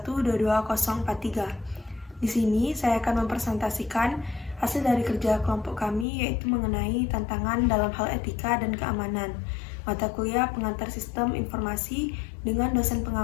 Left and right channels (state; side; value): drops out; right; at 6.1 s